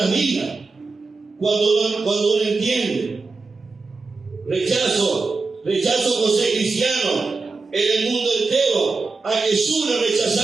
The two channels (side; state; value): left; quieter; 4.0 dB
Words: vidas. Cuando uno entiende. Rechazo por ser cristiano en el mundo entero. A Jesús le